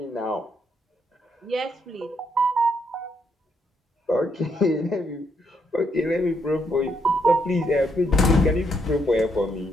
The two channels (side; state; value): both; normal; correlation 0.75